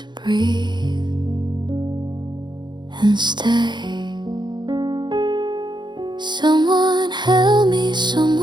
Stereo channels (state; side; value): late; left; 0.22 ms